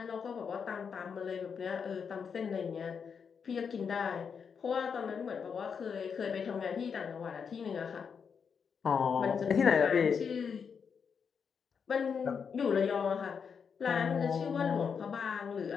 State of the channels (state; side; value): quieter; right; 6.4 dB